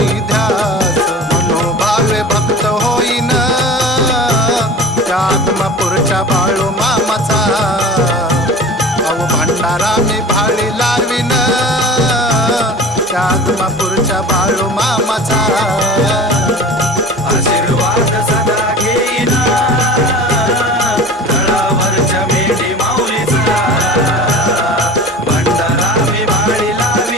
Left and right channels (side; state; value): both; normal; correlation 0.39